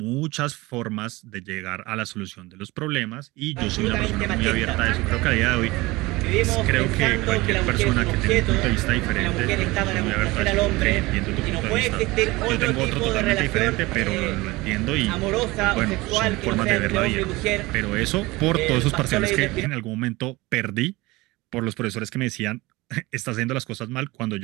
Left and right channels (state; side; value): quieter; left; 21.4 dB